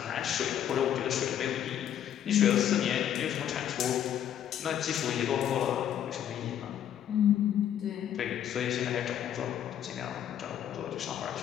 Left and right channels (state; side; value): quieter; right; 10.2 dB